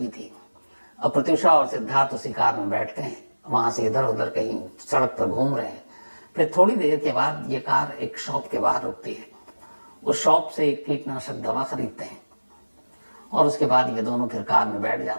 थी। अब प्रत्यूषा और सिद्धार्थ उसी कार में बैठते हैं, वहां से इधर उधर कहीं सड़क पर घूम रहे हैं। फिर थोड़ी देर के बाद ये कार एक शॉप के बाहर रुकती है। उस शॉप से एक कीटनाशक दवा खरीदते हैं और उसके बाद ये दोनों फिर कार में बैठ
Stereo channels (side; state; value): both; inverted; correlation -1.00